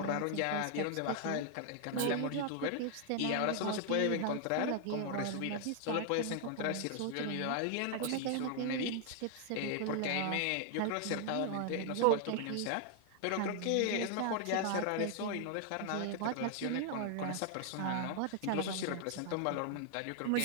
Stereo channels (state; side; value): different; both; correlation 0.00